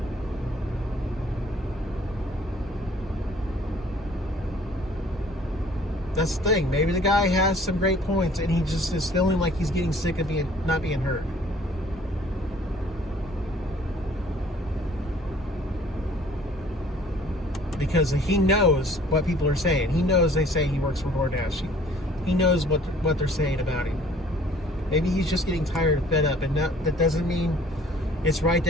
That's the thing. Maybe the guy has some great points and he just is feeling like he's getting sick of not being heard. Because he knows what people are saying. He knows they say he works for DoorDash. He knows what they're saying about him. Maybe he's just getting tired and fed up. And that doesn't mean it's right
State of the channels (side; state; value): both; normal; correlation 0.55